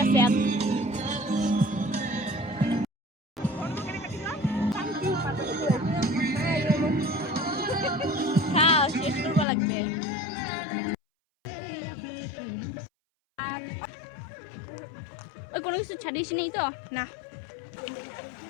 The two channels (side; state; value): right; drops out; at 9.5 s